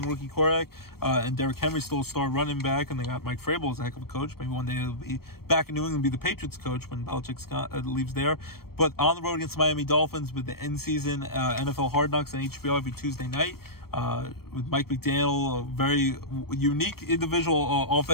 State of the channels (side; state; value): right; late; 0.94 ms